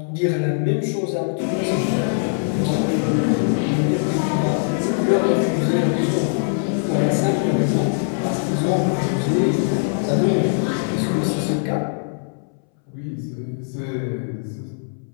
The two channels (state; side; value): silent; right; 64 dB below the other